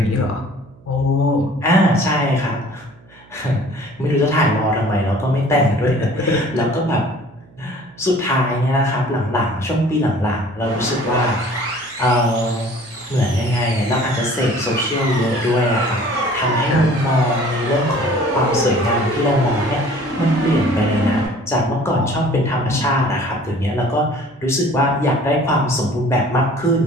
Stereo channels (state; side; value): noise; right; hum, 27 dB below the sound